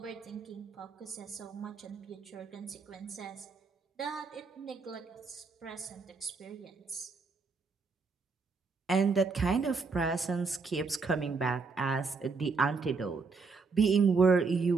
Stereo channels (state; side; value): quieter; left; 4.5 dB